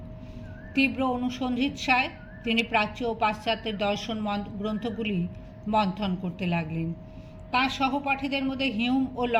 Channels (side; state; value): both; identical; correlation 1.00